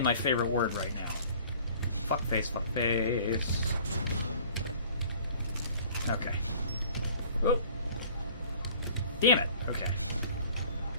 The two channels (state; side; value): inverted; both; correlation -0.50